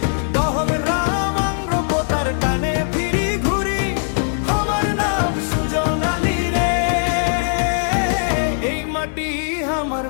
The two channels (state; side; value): silent; right; 55 dB below the other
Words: দহল রামাঙ্গ পোতার টানে ফিরি ঘুরি। আমার নাম সুজন আলী রে, এই মাটি আমার